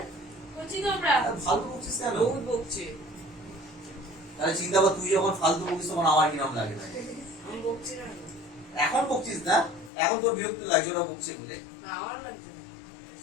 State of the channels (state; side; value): drops out; right; at 9.9 s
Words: বলছি তো আমরা ফালতু বকছিস কেন বহুত বকছে তাহলে চিন্তা কর তুই যখন ফালতু বকিস তখন আমার কি নাম লাগে আমি বকছি না এখন বকছিস না এখন তোর বিরক্ত লাগছে ওরা বকছে বলে আমার লাগছে না